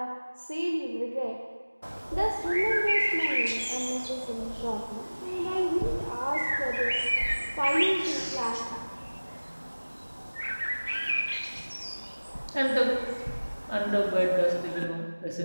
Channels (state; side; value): inverted; both; correlation -1.00